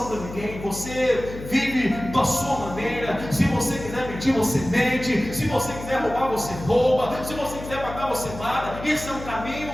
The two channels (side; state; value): left; noise; hum, 11 dB below the sound